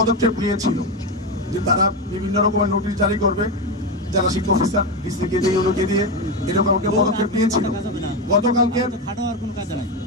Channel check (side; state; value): both; normal; correlation 0.13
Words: নিয়েছিল যে তারা বিভিন্ন রকমের নোটিশ জারি করবে, জেলা শিক্ষা অফিসার ডিসিকে দিয়ে ওকে দিয়ে এরকম একটা পদক্ষেপ নিয়েছিল। গতকালকে